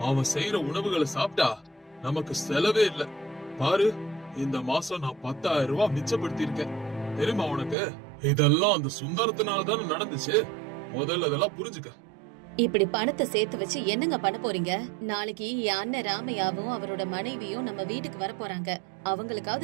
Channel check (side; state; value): left; drops out; at 7.8 s